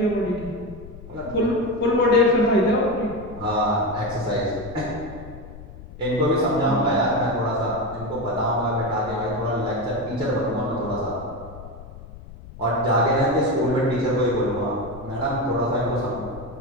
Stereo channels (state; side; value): noise; left; rumble, 15 dB below the sound